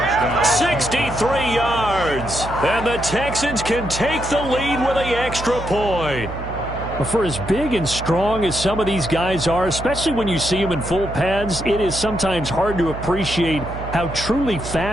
63 yards. And the Texans can take the lead with an extra point. For as big and strong as some of these guys are, especially when you see them in full pads, it is sometimes hard to appreciate how truly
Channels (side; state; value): right; noise; hum, 9 dB below the sound